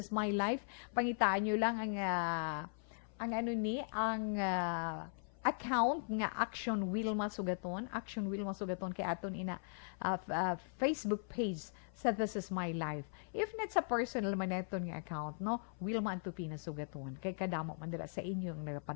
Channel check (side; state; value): right; silent; 52 dB below the other